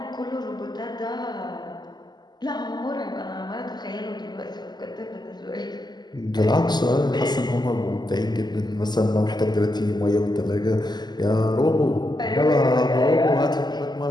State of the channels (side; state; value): right; late; 0.21 ms